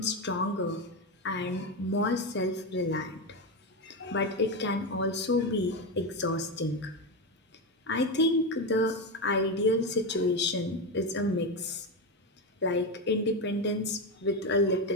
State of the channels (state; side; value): normal; both; correlation 0.13